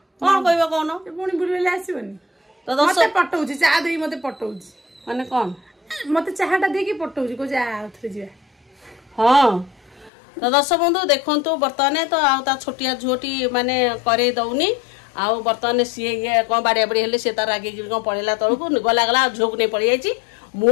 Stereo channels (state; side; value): drops out; right; at 10.1 s